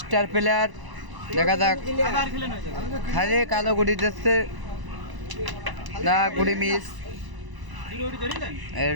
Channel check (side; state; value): left; late; 1.0 ms